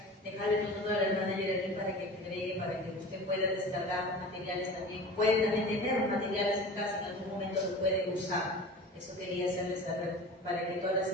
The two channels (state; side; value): normal; both; correlation 0.36